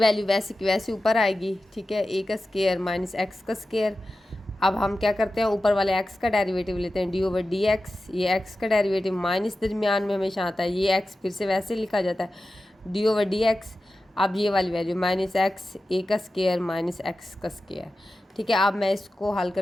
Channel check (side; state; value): both; normal; correlation 0.93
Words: वैसे की वैसे ऊपर आएगी, ठीक है, ए का स्क्वायर माइनस एक्स का स्क्वायर। अब हम क्या करते हैं, ऊपर वाले एक्स का डेरिवेटिव लेते हैं, डी ओवर डी एक्स। ये एक्स का डेरिवेटिव माइनस दरमियान में हमेशा आता है, ये एक्स फिर से वैसे लिखा जाता है, डी ओवर डी एक्स। अब ये वाली वैल्यू माइनस एक्स ए का स्क्वायर माइनस एक्स का स्क्वायर, ठीक है। अब मैं इसको हल